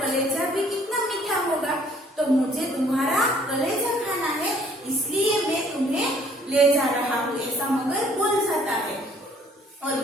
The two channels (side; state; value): both; normal; correlation 0.60